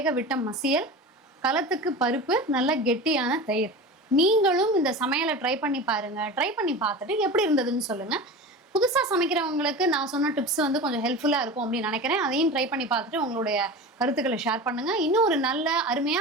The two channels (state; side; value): normal; both; correlation 0.31